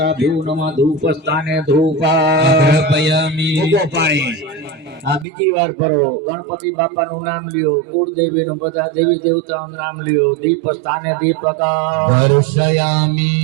ભ્યુ નમઃ ધૂપ સ્થાને ધૂપામી પાણી. આ બીજી વાર ફરવો, ગણપતિ બાપાનું નામ લ્યો, કુળદેવીનું બધા દેવી દેવતાઓનું નામ લ્યો, દીપ સ્થાને દીપક દર્શયામી.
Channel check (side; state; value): left; drops out; at 5.2 s